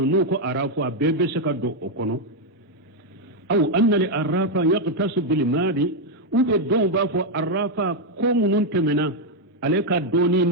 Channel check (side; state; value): both; normal; correlation 0.01